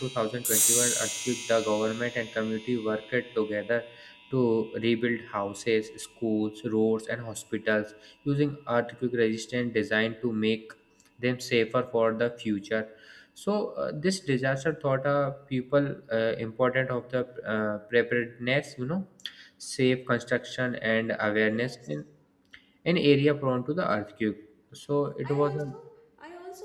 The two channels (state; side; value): identical; both; correlation 1.00